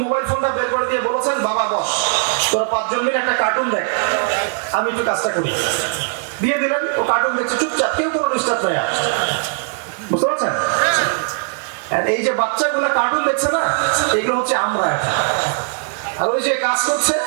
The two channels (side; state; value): left; silent; 62 dB below the other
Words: মোবাইল ফোনটা বের করে দিয়ে বলেছেন, বাবা বস, তোরা 5 জন মিলে একটা কার্টুন দেখ, আমি একটু কাজটা করি। দিয়ে দিলেন, ও কার্টুন দেখছে চুপচাপ, কেউ কোনো ডিস্টার্ব নেই। বুঝতে পারছেন? আর এই যে বাচ্চাগুলো কার্টুন দেখছে না, এগুলো হচ্ছে আমরা এটা, আর ওই যে কাজ করছে